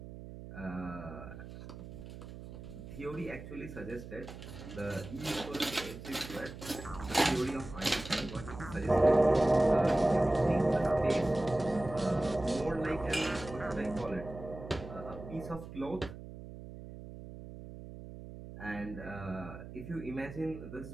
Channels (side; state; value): right; noise; hum, 13 dB below the sound